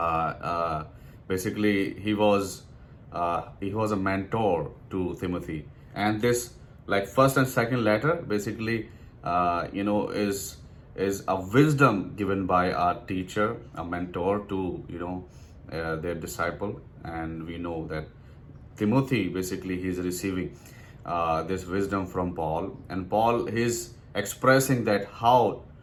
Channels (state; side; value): identical; both; correlation 1.00